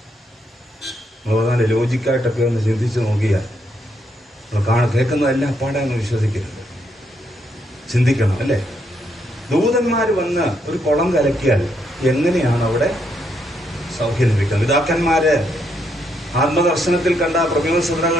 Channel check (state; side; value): normal; both; correlation 0.76